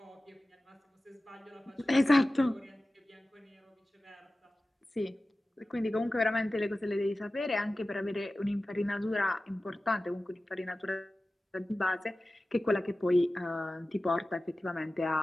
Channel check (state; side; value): normal; both; correlation 0.96